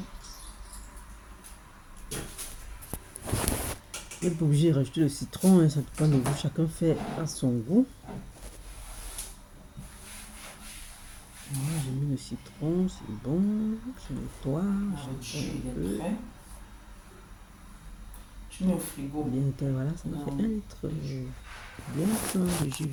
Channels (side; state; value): both; identical; correlation 1.00